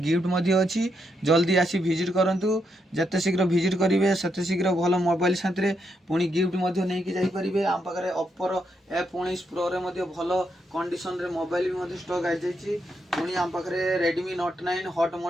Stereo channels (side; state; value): both; normal; correlation 0.80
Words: अच्छी जल्दी आसी विजिट करूँ जिते शीघ्र विजिट करेंगे सेते शीघ्र भल मोबाइल साथी पुणी गिफ्ट नहीं जापरेंगे आम पाखे ओप्पोर F19 प्रो रे भल कंडीशन रे मोबाइल भी स्टक आई जाइए पुणी आम पाखे रेडमी Note 9 हॉट